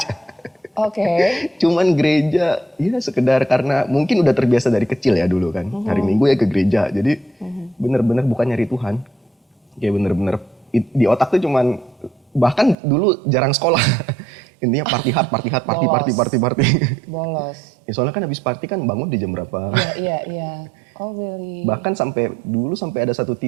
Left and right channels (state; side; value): drops out; left; at 12.8 s